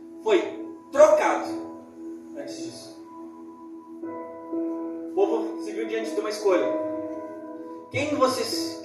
foi trocado antes disso. O povo se viu diante de uma escolha. Quem vocês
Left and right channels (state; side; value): identical; both; correlation 1.00